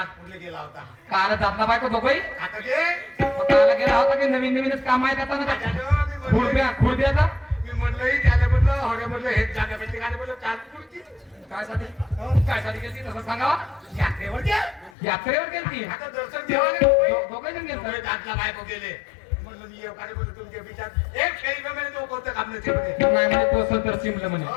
गेला होता काल जातला बायको दोघही आता गे काल गेला होता की नवीन नवीनच काम आहे त्याचा ना त्याच्यानं मी म्हणलं- खुर्द्याचा मी म्हणलं त्याला म्हणलं हरे म्हणलं हेच जागा भेटली का म्हणलं चाटपूरची काय साठी काय साठी गेली तसं सांगावा यात्रेवर गे यात्रेवर गेलती आता दर्शन देवाले दोघे जण दोघे गेलत दातला बायको गेले म्हणलं मी एवढे म्हणलं तुमच्या विचार एक फेरी म्हणे तो कोणतं काम नसते म्हणे नाही म्हणे तो संतर चिमलं म्हणे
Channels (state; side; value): drops out; right; at 14.9 s